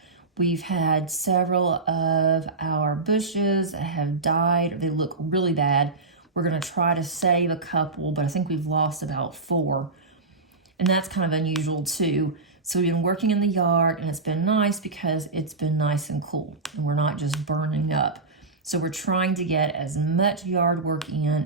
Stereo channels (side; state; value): left; quieter; 3.8 dB